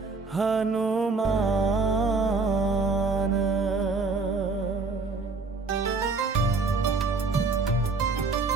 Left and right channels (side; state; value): left; quieter; 4.1 dB